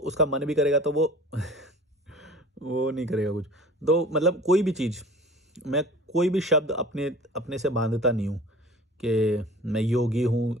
मन भी करेगा तो वो वो नहीं करेगा कुछ। तो मतलब कोई भी चीज़, मैं कोई भी शब्द अपने अपने से बांधता नहीं हूँ कि मैं योगी हूँ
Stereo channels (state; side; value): normal; both; correlation 0.42